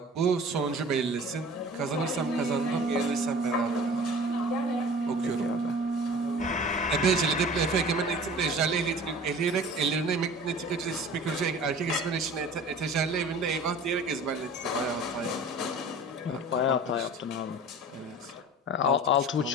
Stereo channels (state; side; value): normal; both; correlation 0.42